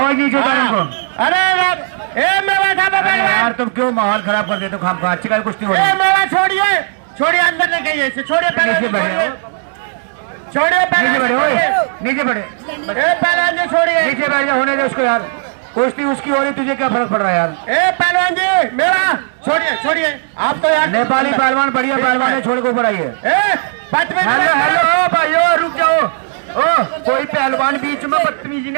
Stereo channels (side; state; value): left; silent; 60 dB below the other